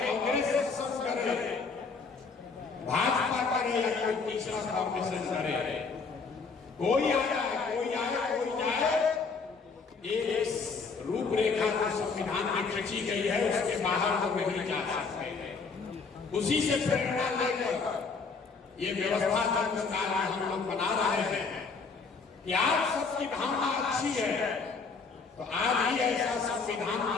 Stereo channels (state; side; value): quieter; right; 4.7 dB